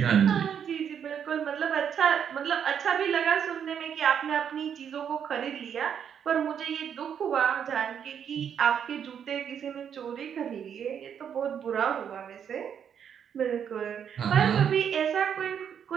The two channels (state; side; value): quieter; left; 8.2 dB